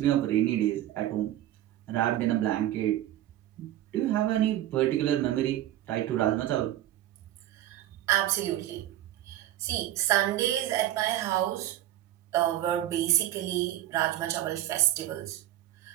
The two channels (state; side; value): quieter; left; 13.4 dB